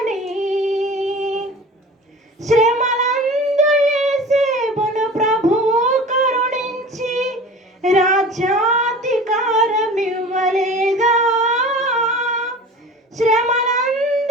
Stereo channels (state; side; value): normal; both; correlation 0.39